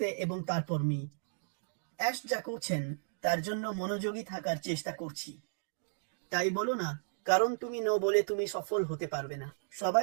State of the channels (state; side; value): silent; left; digital silence